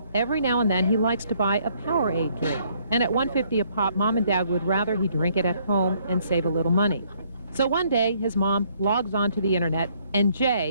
every now and then he likes to buy a Powerade drink. And at $1.50 a pop, Mom and Dad would rather he drink it at home and save a little money. So one day, his mom logs onto the internet and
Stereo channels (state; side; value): inverted; both; correlation -0.66